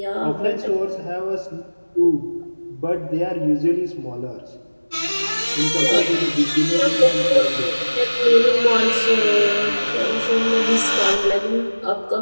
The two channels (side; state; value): both; inverted; correlation -1.00